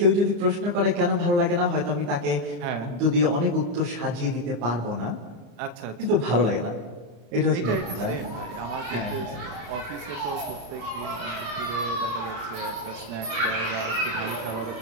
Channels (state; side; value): late; left; 34 ms